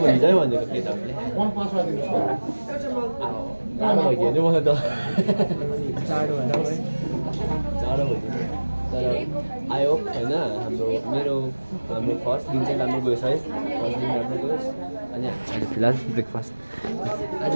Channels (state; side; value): inverted; both; correlation -1.00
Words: भन्छ भनेको केटाहरूले जाडो भइदियो नि मलाई त जाडो भन्दा है जाडो भइदियो तर आई होप होइन हाम्रो फर्स्ट दिन चाहिँ राम्रो गएछ है फर्स्ट दिन राम्रो गयोस् अनि अहिले फिलहाल ब्रेकफास्ट आज